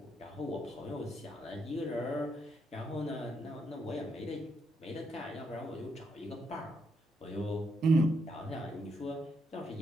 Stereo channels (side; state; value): both; normal; correlation 0.78